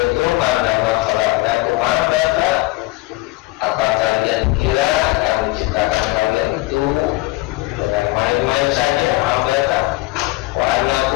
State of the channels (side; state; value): right; quieter; 20.7 dB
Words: annama khalaqnakum abata, apa kalian kira kami ciptakan kalian itu dengan main-main saja, abata? Wa